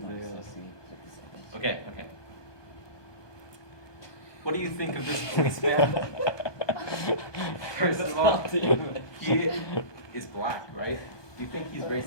Okay. What do you think of this policeman? First of all, he is black, right? Do you think he's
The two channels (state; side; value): late; right; 1.2 ms